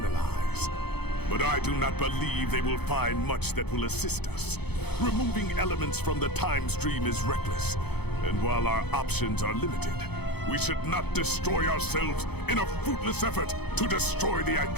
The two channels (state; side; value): late; right; 0.98 ms